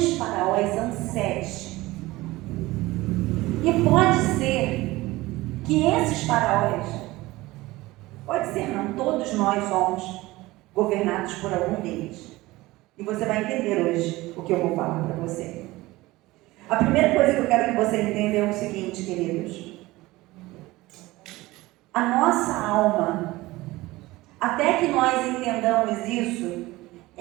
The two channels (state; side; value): quieter; left; 19.3 dB